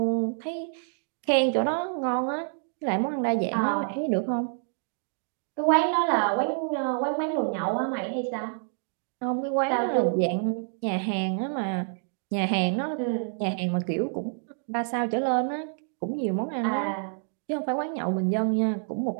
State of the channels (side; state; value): left; silent; 60 dB below the other